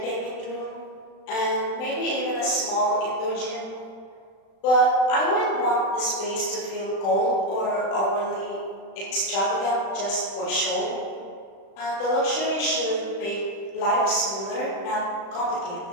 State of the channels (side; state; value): right; late; 36 ms